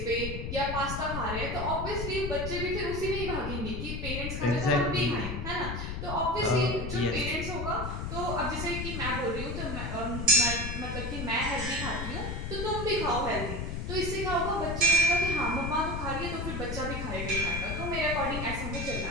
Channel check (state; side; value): noise; left; rumble, 4 dB below the sound